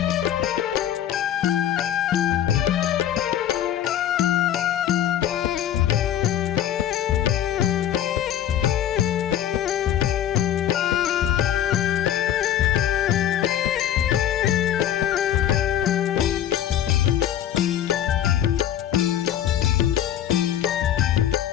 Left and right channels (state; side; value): quieter; right; 10.8 dB